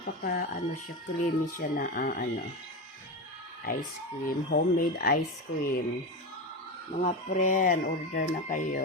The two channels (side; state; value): both; normal; correlation 0.18